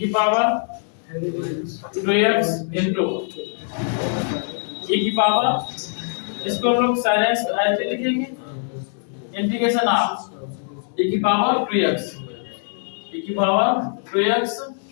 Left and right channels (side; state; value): right; silent; 64 dB below the other